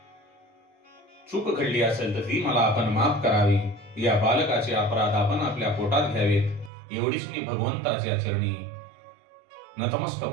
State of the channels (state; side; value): drops out; left; at 6.7 s